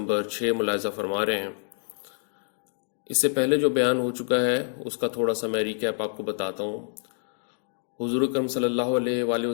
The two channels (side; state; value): right; silent; digital silence